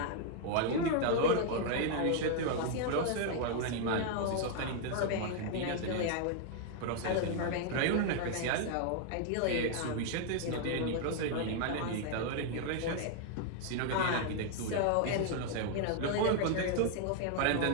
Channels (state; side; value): different; both; correlation 0.00